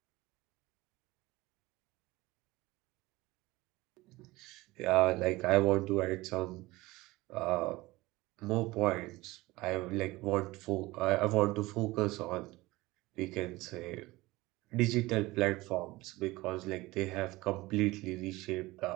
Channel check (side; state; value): left; quieter; 20.2 dB